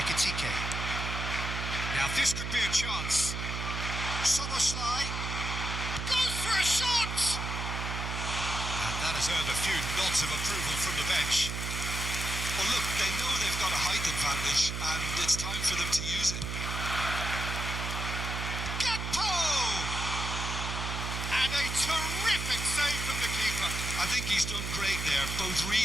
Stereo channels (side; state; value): right; noise; hum, 4 dB below the sound